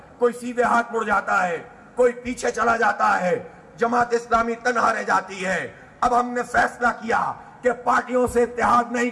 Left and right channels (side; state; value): both; identical; correlation 1.00